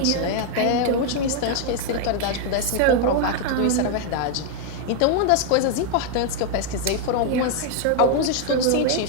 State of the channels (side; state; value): both; different; correlation 0.00